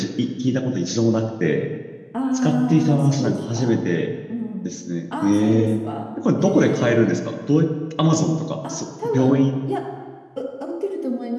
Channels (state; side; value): identical; both; correlation 1.00